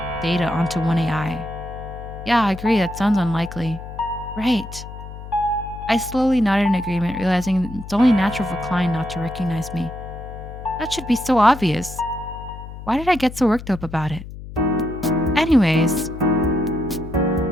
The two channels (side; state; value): left; noise; hum, 12 dB below the sound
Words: data onto one AI. Yeah, I agree, that sounds unlikely. Right. I slowly nodded in agreement, realizing it's only natural for Klein not to recognize me. That should be so obvious. Why did I get so worked up about it? Anyways,